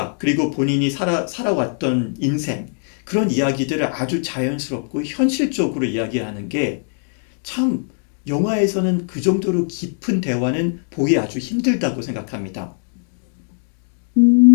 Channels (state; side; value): silent; right; 56 dB below the other